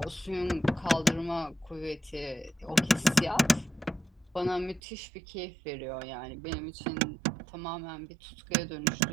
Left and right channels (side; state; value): left; drops out; at 4.8 s